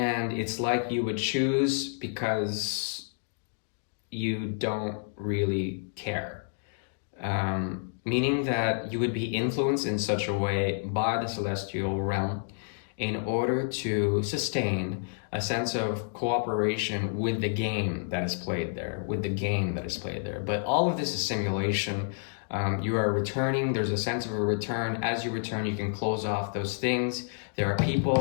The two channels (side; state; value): right; silent; digital silence